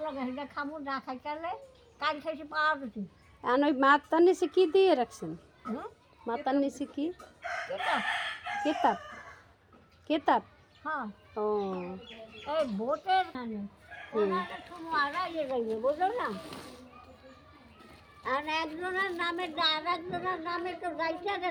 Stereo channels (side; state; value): both; identical; correlation 1.00